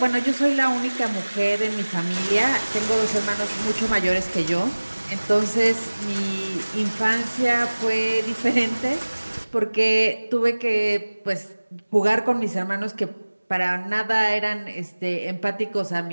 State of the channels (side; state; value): both; inverted; correlation -1.00